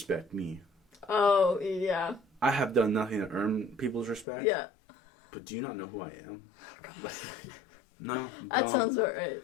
me. Oh, yeah. I have done nothing to earn people's respect. Yeah. But do you not know who I am? No, that sounds about right.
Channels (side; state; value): right; drops out; at 4.2 s